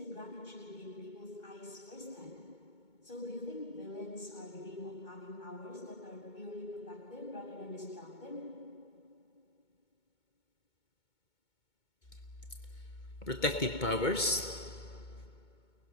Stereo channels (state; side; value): late; right; 2.2 ms